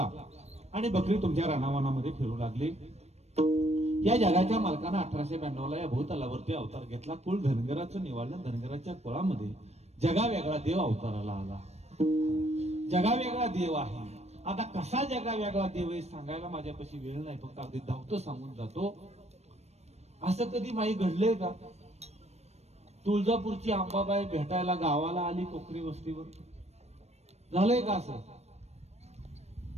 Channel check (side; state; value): left; late; 0.31 ms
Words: आणि बकरी तुमच्या रानावनामध्ये फिरू लागली। या जगाच्या मालकानं 1892 ला या भूतलावरती अवतार घेतला। कुळ धनगराचं निवाळलं, धनगराच्या कुळामध्ये जगा वेगळा देव अवताराला आला। जगा वेगळा देव आहे। आता कसा जगा वेगळा देव आहे सांगायला माझ्यापाशी वेळ नाही, फक्त अगदी धावतो सांगून जातो। असं कधी माई घडलंय का? तुळजापूरची अंबाबाई भेटायला गावाला आली कोकरी वस्तीवर, झालंय का असं?